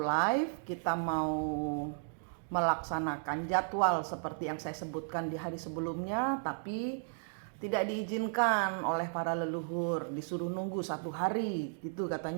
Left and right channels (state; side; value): silent; left; digital silence